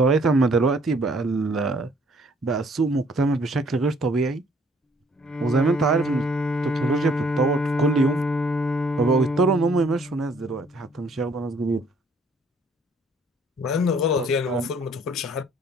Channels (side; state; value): both; normal; correlation 0.62